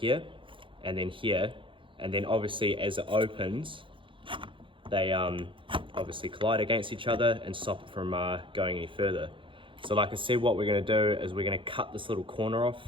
and then obviously as it opens, they obviously collide against each other and stop it from going any further. So like I said, what we're going to do is we're going to cut this little corner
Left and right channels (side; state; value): left; late; 0.25 ms